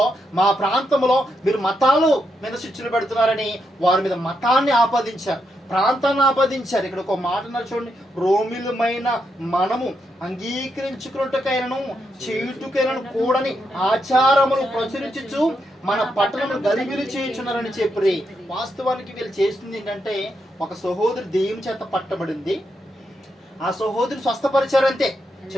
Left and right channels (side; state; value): both; normal; correlation 0.82